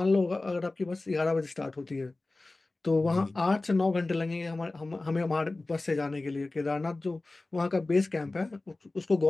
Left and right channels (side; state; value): right; quieter; 3.1 dB